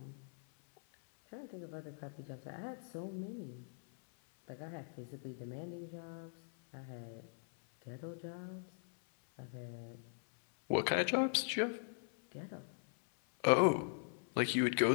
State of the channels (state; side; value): silent; right; 51 dB below the other